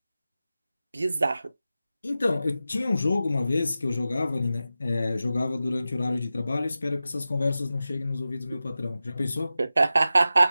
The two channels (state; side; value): inverted; both; correlation -0.93